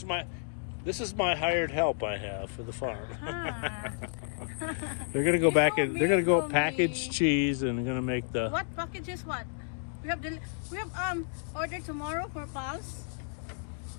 this is my hired help I have for the farm. Huh. They're gonna go back and they're gonna go For me. package cheese and they're gonna make the. What package is what? We have order tomorrow for Pulse.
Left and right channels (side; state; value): right; silent; digital silence